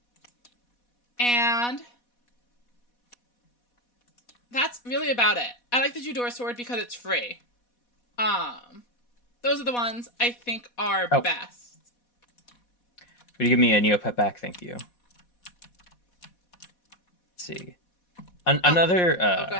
that's really about it. I like the Judor Sword because it's free. Those are the ones I think are best. Could you give me a Neopet back? Thank you. Let's see. Another... go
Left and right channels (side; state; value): right; late; 4.1 ms